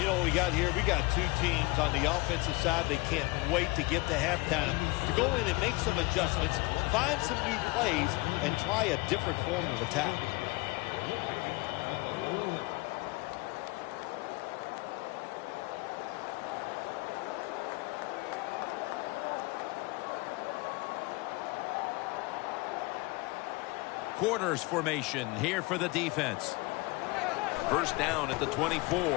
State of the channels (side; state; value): right; quieter; 24.1 dB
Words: know what we got here? We got two teams on the offensive side. They can't wait to get to halftime to go in and make some adjustments, find some new plays, and try a different form of attack. Quarters formation here for the defense. First down at the 24.